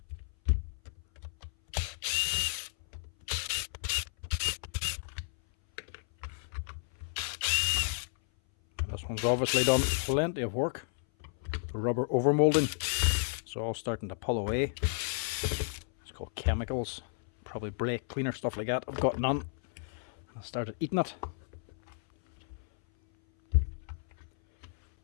This one's obviously done plenty of work. The rubber overmolding, it's all starting to pull away. It's called chemicals, probably brake cleaner, stuff like that. I've got none. I started eating it.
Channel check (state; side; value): silent; right; 56 dB below the other